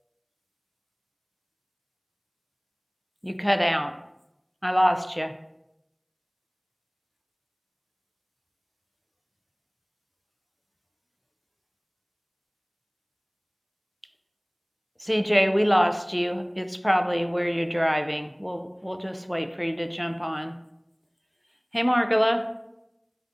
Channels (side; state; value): both; identical; correlation 1.00